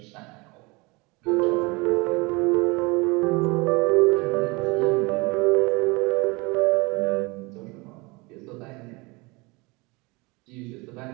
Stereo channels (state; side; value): quieter; left; 25.8 dB